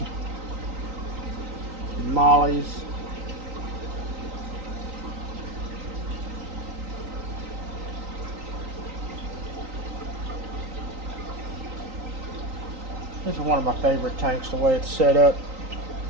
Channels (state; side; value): late; left; 3.9 ms